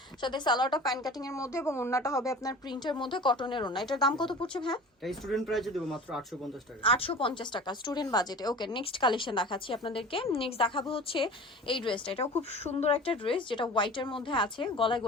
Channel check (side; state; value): both; normal; correlation 0.39